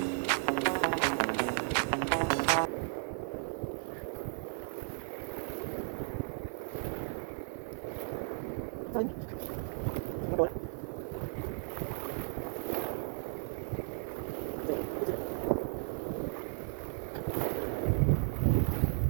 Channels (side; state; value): left; silent; digital silence